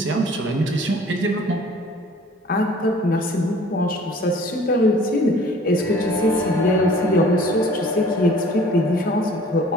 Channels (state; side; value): normal; both; correlation 0.51